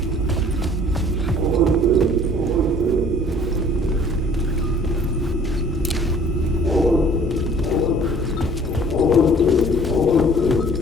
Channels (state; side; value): normal; both; correlation 0.52